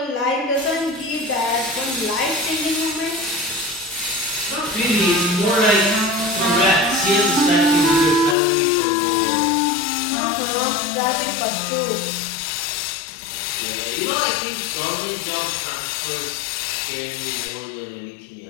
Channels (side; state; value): right; drops out; at 8.3 s